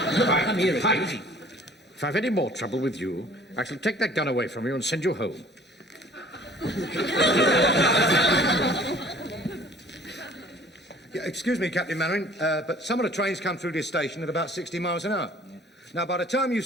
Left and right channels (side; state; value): both; normal; correlation 0.52